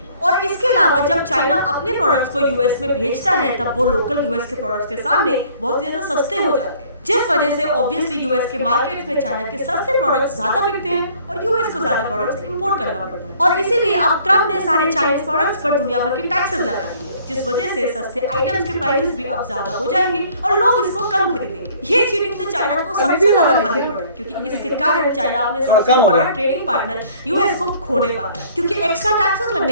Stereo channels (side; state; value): both; inverted; correlation -0.58